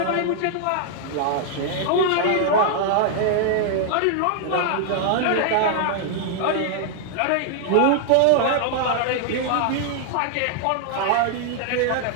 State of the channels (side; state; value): both; different; correlation -0.01